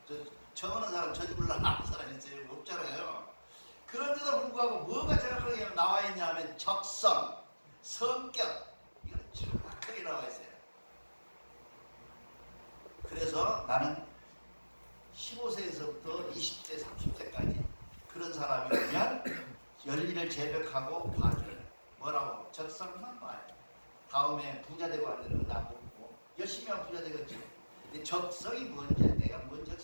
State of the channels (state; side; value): inverted; both; correlation -1.00